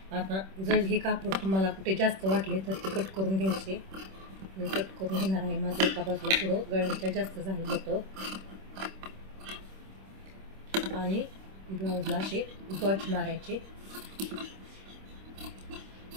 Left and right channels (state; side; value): late; left; 26 ms